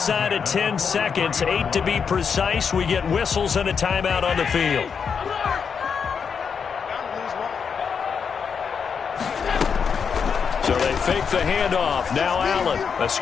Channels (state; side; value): quieter; right; 6.4 dB